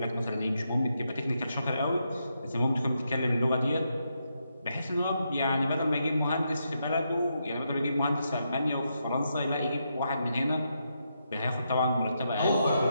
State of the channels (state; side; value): inverted; both; correlation -0.82